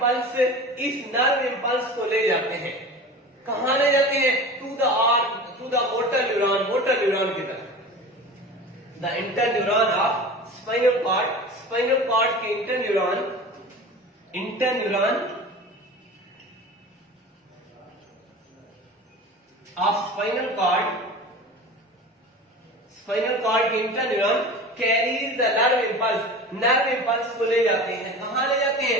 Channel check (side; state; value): both; normal; correlation 0.35